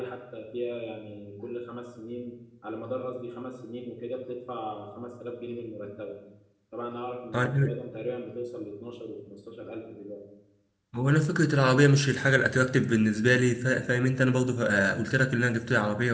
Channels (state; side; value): identical; both; correlation 1.00